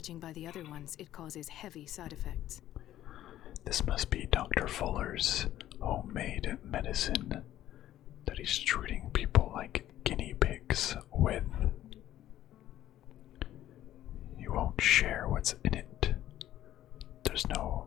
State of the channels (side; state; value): right; quieter; 13.0 dB